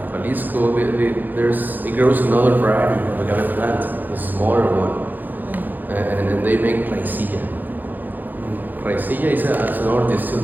Jalisco, it grows another variety of agave plant, a smaller one, and then they make plaisilla. Plaisilla is another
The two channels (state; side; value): late; left; 0.086 ms